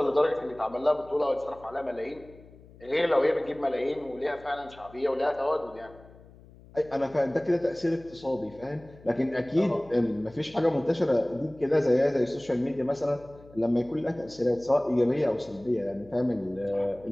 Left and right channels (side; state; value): left; noise; hum, 23 dB below the sound